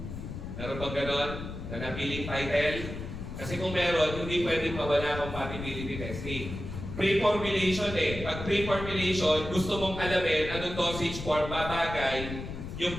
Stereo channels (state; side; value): noise; left; rumble, 8 dB below the sound